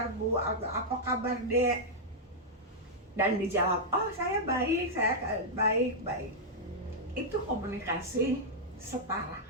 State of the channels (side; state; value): both; normal; correlation -0.05